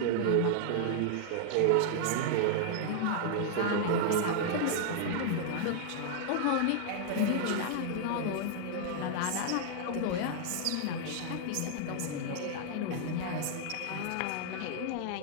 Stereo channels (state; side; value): different; both; correlation -0.01